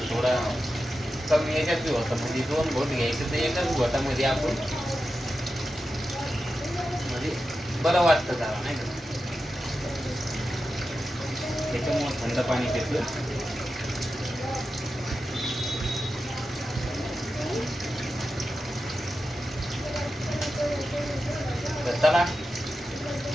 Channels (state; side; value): normal; both; correlation 0.91